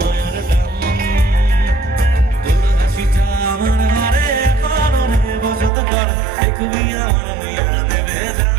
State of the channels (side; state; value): left; drops out; at 5.7 s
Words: টান। তোর হাসিটা আমার ঘরে এখনো বসত করে, দেখবি আমার নিয়ে দেবে যান।